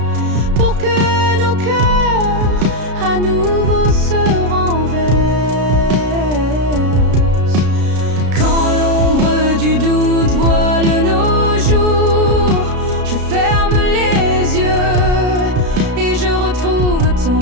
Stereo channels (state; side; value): late; left; 33 ms